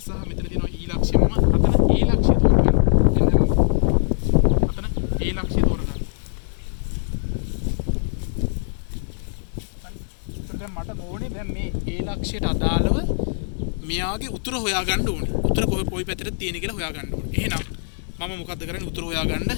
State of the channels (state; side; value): silent; right; digital silence